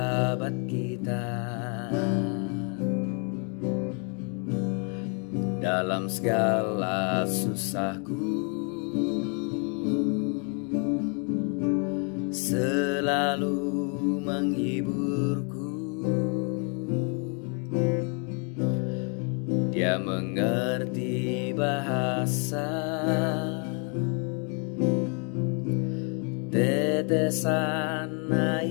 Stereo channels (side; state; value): right; quieter; 38.0 dB